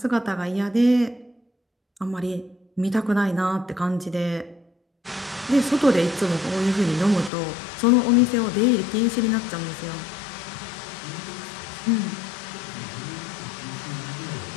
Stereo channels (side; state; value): right; drops out; at 7.3 s